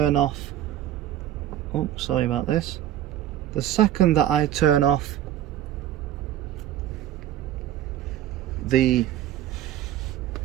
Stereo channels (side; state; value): left; quieter; 12.0 dB